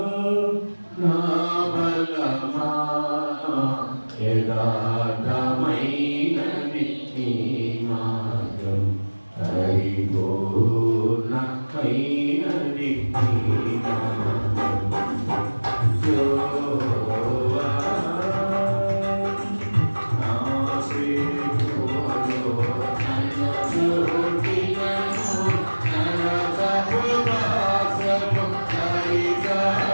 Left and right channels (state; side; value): inverted; both; correlation -1.00